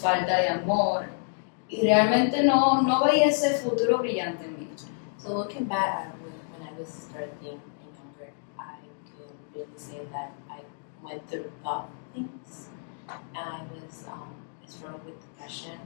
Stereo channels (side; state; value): right; silent; digital silence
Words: de amor y realmente no veía ese futuro brillante en mí. So looking back at when I was 13 and younger, I can really say that I went through tough things, and I was struggled with depression.